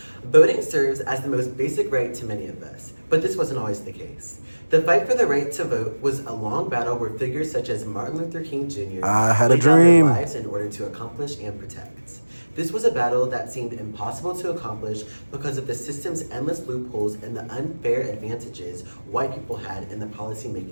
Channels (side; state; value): both; inverted; correlation -1.00